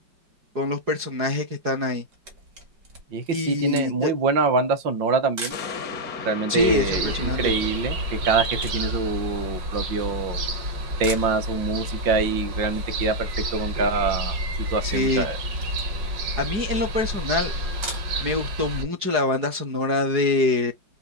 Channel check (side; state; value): left; late; 4.8 ms